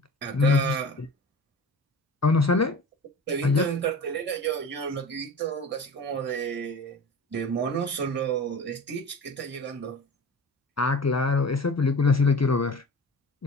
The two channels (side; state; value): both; normal; correlation 0.38